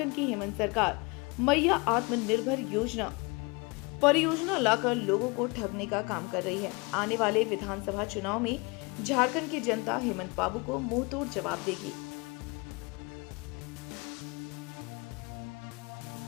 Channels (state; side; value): quieter; right; 28.2 dB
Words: की हेमंत सरकार मैया आत्मनिर्भर योजना परियोजना लाकर लोगों को ठगने का काम कर रही है। आने वाले विधानसभा चुनाव में झारखंड की जनता हेमंत बाबू को मुंहतोड़ जवाब देगी।